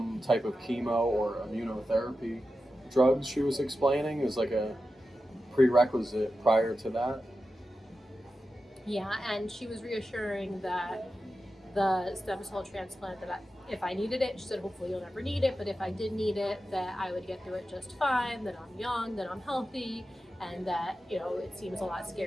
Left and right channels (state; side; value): normal; both; correlation 0.92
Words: type of chemo or immunotherapy drugs. She was explaining is like a prerequisite prior to that. Yeah, and she was reassuring that the stem cell transplant, that if I needed it, she said hopefully you'll never need it, but if I did need it, that I would get through it just fine, that I'm young, that I'm healthy, and that, you know, it seems a lot